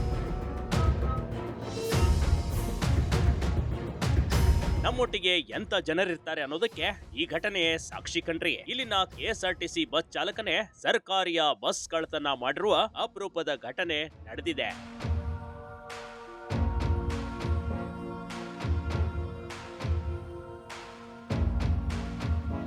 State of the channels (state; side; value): identical; both; correlation 1.00